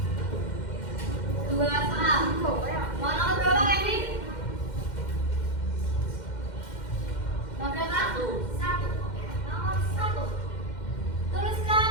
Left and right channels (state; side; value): late; right; 2.1 ms